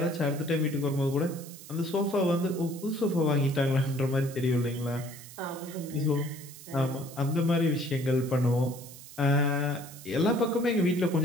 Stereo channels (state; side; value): noise; right; hiss, 16 dB below the sound